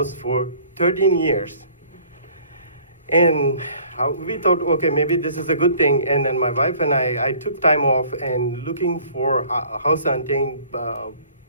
for 13 years. And we thought, okay, maybe this is a good thing. And then my wife and I took time off and looking for house hunting,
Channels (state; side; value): inverted; both; correlation -0.53